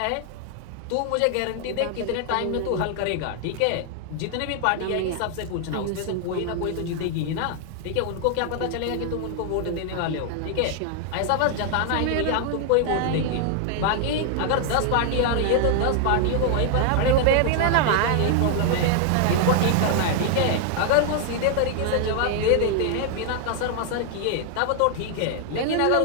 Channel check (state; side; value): different; both; correlation 0.00